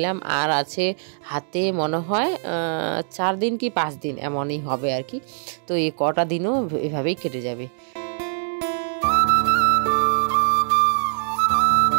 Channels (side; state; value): left; silent; digital silence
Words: আর আছে হাতে মনে হয় 4 দিন কি 5 দিন এমনই হবে আর কি। তো এই কটা দিনও এভাবেই কেটে যাবে।